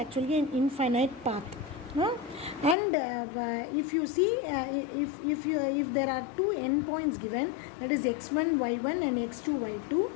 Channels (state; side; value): drops out; right; at 2.8 s